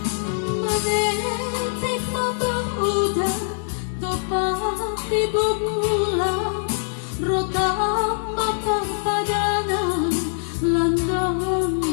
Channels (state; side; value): silent; right; digital silence